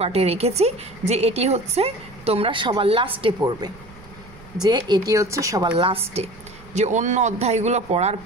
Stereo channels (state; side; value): noise; right; rumble, 22 dB below the sound